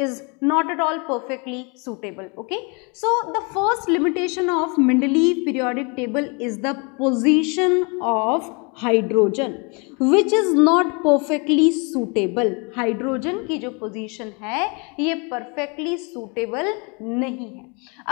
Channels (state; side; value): quieter; right; 32.0 dB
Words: not at all perfectly suitable. Okay, so the first limitation of Mendeleev periodic table is the position of hydrogen which is not perfectly suitable. Hydrogen की जो position है ये perfectly suitable नहीं है।